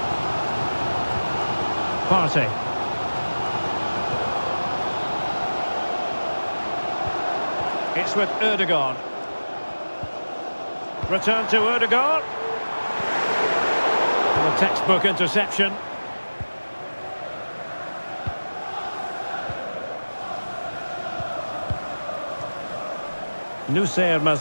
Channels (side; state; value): both; inverted; correlation -1.00